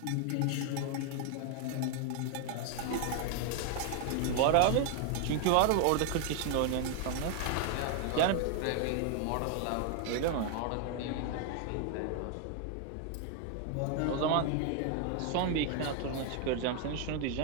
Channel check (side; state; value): both; different; correlation 0.00